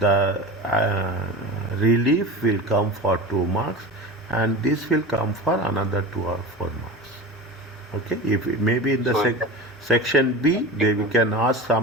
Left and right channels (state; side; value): normal; both; correlation 0.30